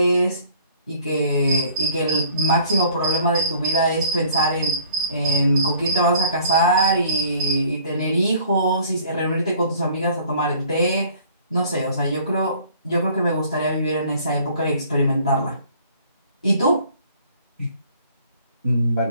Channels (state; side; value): inverted; both; correlation -0.54